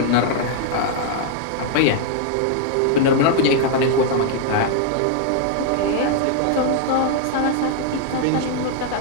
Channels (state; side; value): different; both; correlation -0.01